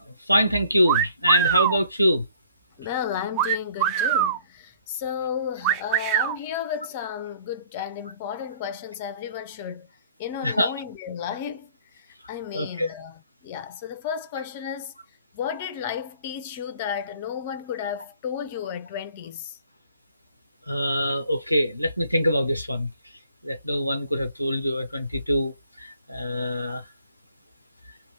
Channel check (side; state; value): both; inverted; correlation -0.58